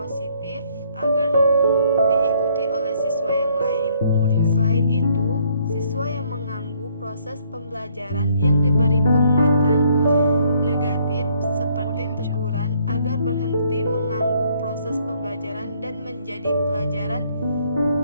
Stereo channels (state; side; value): inverted; both; correlation -0.66